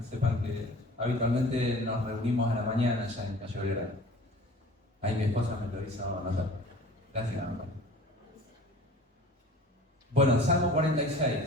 sepan que habitualmente nos reunimos a la mañana ya en Calle Belgrano. Ahí mi esposa me lo hizo anotar. Gracias, amor. Bueno, Salmo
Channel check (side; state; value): both; normal; correlation 0.45